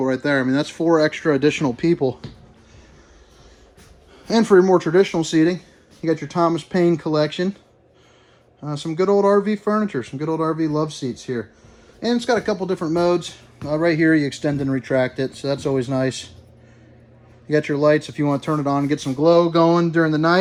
right there. I mean, that's 4 extra additional people. And for your more traditional seating, you got your Thomas Paine collection. Some good old RV furniture, some good old RV love seats here. And it's got a couple different modes. Right here, you extend and retract it, so that's always nice. You got your lights if you want to turn it on and get some glow going during the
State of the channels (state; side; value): identical; both; correlation 1.00